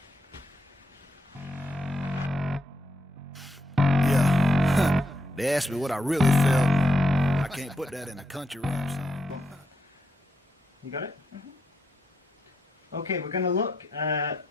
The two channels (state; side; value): normal; both; correlation 0.81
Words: Yeah. They asked me what I really felt. I can't put that in a country rap song. You got it? Mm-hmm. Okay, we're going to look at